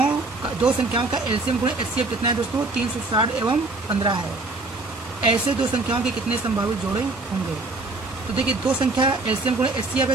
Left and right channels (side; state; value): left; quieter; 3.2 dB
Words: का एलसीएम गुणे एचसीएफ कितना है दोस्तों, 360 एवं 15 है। ऐसे दो संख्याओं के कितने संभावित जोड़े होंगे। तो देखिए दो संख्या एलसीएम गुणे एचसीएफ